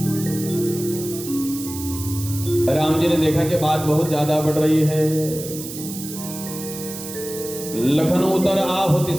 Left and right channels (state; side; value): noise; right; hiss, 10 dB below the sound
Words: राम जी ने देखा कि बात बहुत ज्यादा बढ़ रही है। लखन उतर आहुति